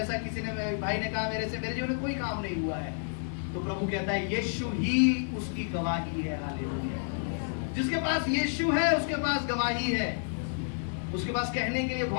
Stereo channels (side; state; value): right; silent; 58 dB below the other